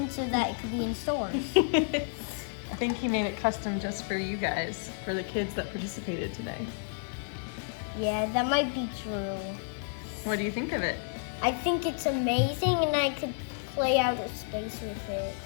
so that it could be in stores. I think he made it custom just for you guys, for the kids that participated today. Yeah, that might be true. What do you think of it? I think it's amazing, and I could play outer space with it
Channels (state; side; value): silent; right; digital silence